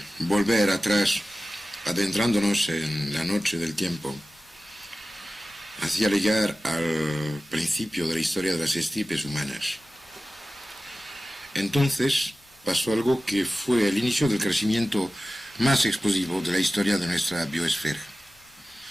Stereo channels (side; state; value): both; normal; correlation 0.95